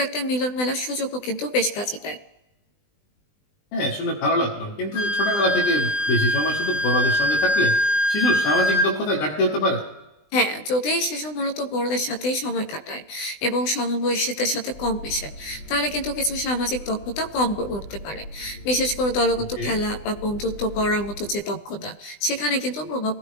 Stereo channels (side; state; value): right; late; 20 ms